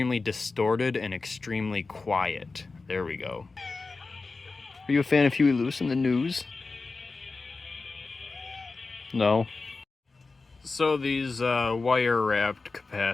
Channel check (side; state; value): right; quieter; 3.9 dB